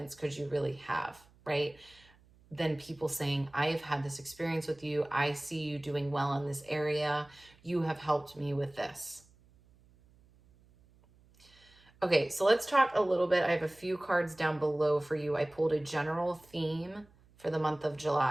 could you really have, right? Than people saying, I have had this experience with you. I see you doing well in this area. You have helped me with this. Okay, so let's talk a little bit. I have a few cards down below for you. I pulled a general theme for the month of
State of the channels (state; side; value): noise; right; hum, 29 dB below the sound